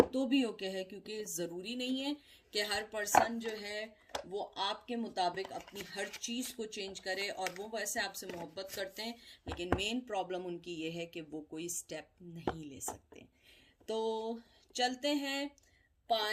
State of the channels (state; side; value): identical; both; correlation 1.00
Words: तो भी ओके है, क्योंकि ज़रूरी नहीं है कि हर पर्सन जो है वो आपके मुताबिक अपनी हर चीज़ को चेंज करे, और वो वैसे आपसे मोहब्बत करते हैं, लेकिन मेन प्रॉब्लम उनकी ये है कि वो कोई स्टेप नहीं ले सकते। तो चलते हैं